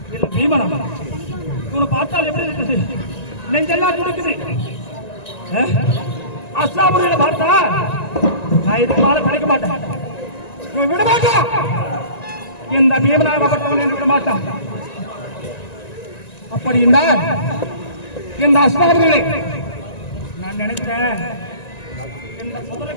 இல்ல பீமனா? இவனை பார்த்தால் எப்படி இருக்குது? நெஞ்செல்லாம் துடிக்குது. அஸ்லாமுறையில பார்த்தா நான் இதுக்கு மேல கிடைக்க மாட்டேன். இவன் விட மாட்டான். இந்த பீமனாகப்பட்டவன் விட மாட்டான். அப்படி என்றால் இந்த அஸ்லாமுறைகளை நான் நினைக்கிறேன். இந்த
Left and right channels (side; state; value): right; late; 1.9 ms